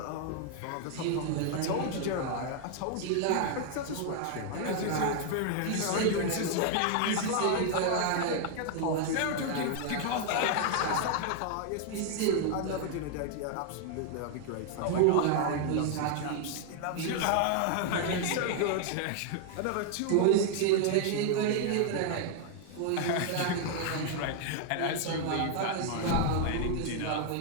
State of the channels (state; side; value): different; both; correlation 0.00